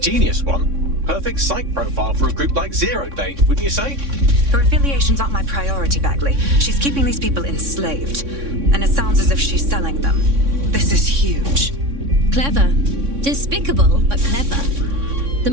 one. Perfect psych profile for a group like Zero Day, wouldn't you say? Her affiliations aren't my priority, Bagley. She's keeping these people enslaved. And it sounds as if she's selling them. This is huge. Clever. Despicable, but clever. The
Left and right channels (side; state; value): left; late; 3.6 ms